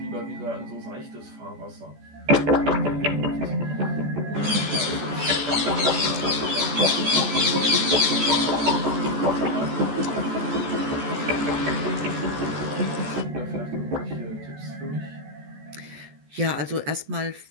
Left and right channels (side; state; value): left; late; 14 ms